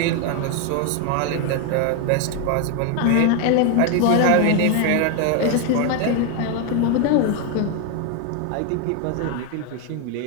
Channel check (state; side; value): different; both; correlation 0.01